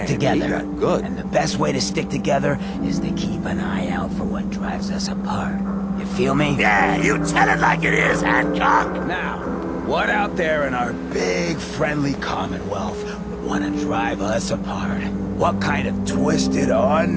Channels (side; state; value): both; identical; correlation 1.00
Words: together. And the best way to stick together is to keep an eye out for what drives us apart. You feel me? Yeah, you tell it like it is, Hancock. Now, what out there in our big, friendly Commonwealth would want to drive us apart? What kind of twisted,